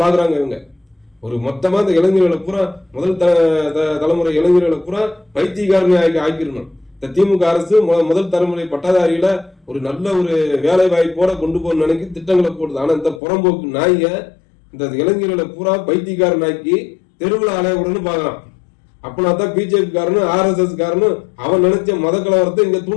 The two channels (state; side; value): drops out; right; at 13.2 s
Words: பாக்குறாங்க இவங்க. ஒரு மொத்தமா இந்த இளைஞர்களை பூரா முதல் தலைமுறை இளைஞர்களை பூரா பைத்தியக்காரனை ஆக்கிடணும். இந்த திமுக அரசு முதல் தலைமுறை பட்டதாரியில ஒரு நல்ல ஒரு வேலை வாய்ப்போட கொண்டு போக நினைக்கி திட்டங்களை போடுது. ஆனா இந்த புறம்போக்கு நாய இந்த இளைஞர்களை பூரா பைத்தியக்காரன் ஆக்கி தெருவில் அலையவுடன்னு பாக்குறான். அப்பனா தான் பிஜேபி காரனும் RSS காரனும் அவன் நினைச்ச மத கலவரத்தை இங்க